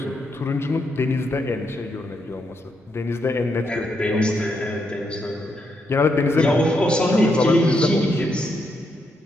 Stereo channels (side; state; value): both; normal; correlation 0.80